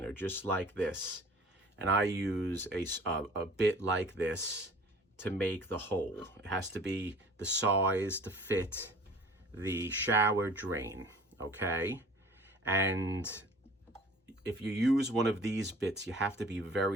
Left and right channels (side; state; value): both; normal; correlation 0.47